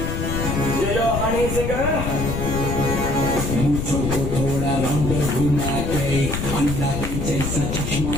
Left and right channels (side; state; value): left; noise; rumble, 3 dB below the sound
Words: Yo Honey Singer. मुझको थोड़ा राउंड घुमा के अंडा के जैसा चश्मा